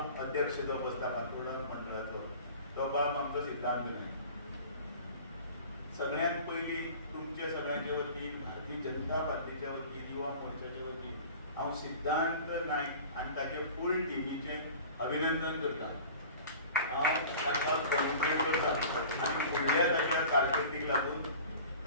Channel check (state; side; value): inverted; both; correlation -0.41